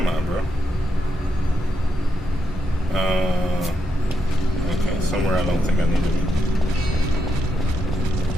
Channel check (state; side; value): normal; both; correlation 0.83